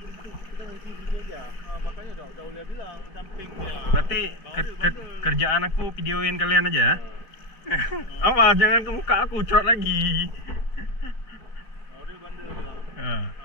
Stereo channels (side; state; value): right; late; 4.6 ms